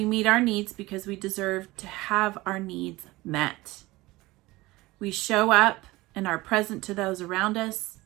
meet our needs because we deserve to have our needs met. We show up and are present to those around us.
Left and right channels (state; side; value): quieter; left; 20.0 dB